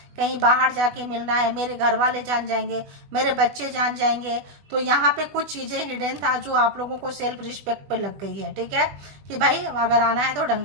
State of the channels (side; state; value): left; late; 20 ms